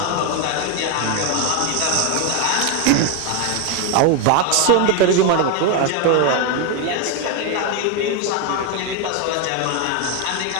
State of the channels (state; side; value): different; both; correlation 0.01